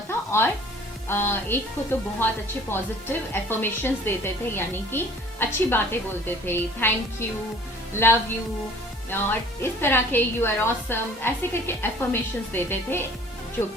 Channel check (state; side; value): normal; both; correlation 0.50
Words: और एक को तो बहुत अच्छे पॉजिटिव एफर्मेशंस देते थे, यानी कि अच्छी बातें बोलते थे, थैंक यू, लव यू, और इस तरह के यू आर ऑसम, ऐसे करके एफर्मेशंस देते थे, जो